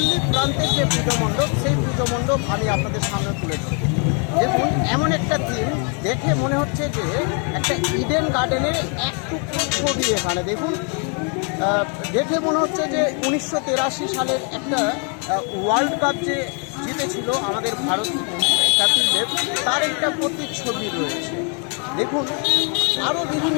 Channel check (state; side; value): quieter; right; 38.7 dB